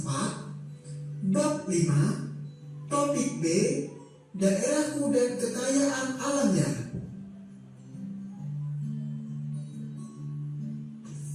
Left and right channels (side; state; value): both; identical; correlation 1.00